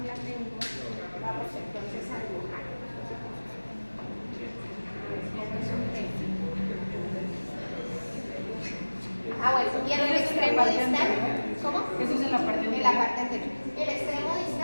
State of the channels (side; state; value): both; inverted; correlation -1.00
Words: la tengo, vamos entonces a dibujar. Bueno, y en el extremo distal, ¿cómo? Eso es en la parte anterior. En la parte anterior. El extremo